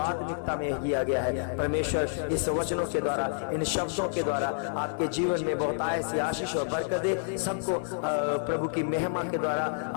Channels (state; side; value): silent; right; 59 dB below the other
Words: में दिया गया है। परमेश्वर इस वचनों के द्वारा, इन शब्दों के द्वारा आपके जीवन में बहुत ऐसी आशीष और बरकत दे। सबको प्रभु की महिमा के द्वारा